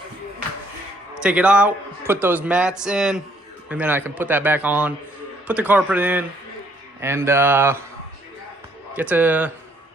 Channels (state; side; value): normal; both; correlation 0.66